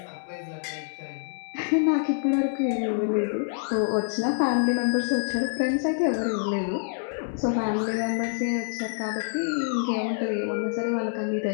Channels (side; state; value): right; silent; digital silence